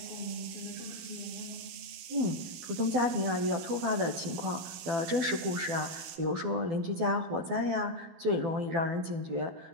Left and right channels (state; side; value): late; left; 13 ms